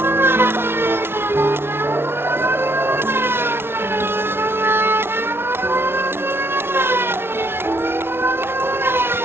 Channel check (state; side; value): late; left; 0.11 ms